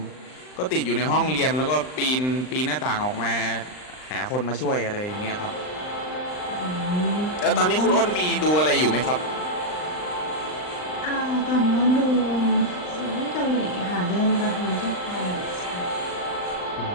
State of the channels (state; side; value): late; right; 39 ms